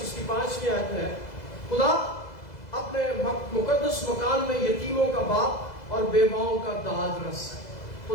اس کی 5ویں آیت میں ہے، خدا اپنے مقدس مکان میں یتیموں کا باپ اور بیواؤں کا داد رس ہے۔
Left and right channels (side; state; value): right; late; 2.0 ms